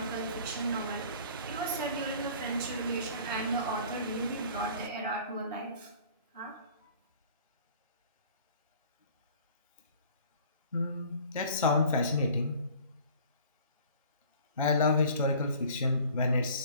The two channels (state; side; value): inverted; both; correlation -0.49